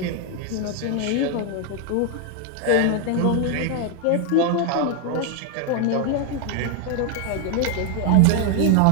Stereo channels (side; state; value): both; different; correlation 0.00